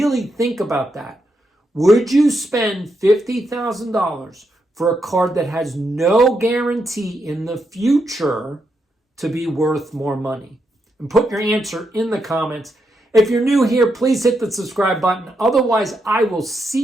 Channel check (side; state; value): both; normal; correlation 0.82